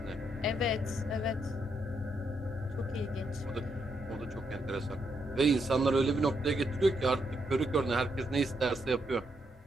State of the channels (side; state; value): both; normal; correlation 0.78